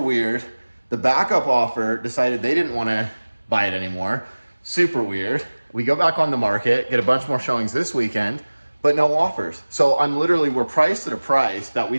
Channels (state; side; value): inverted; both; correlation -1.00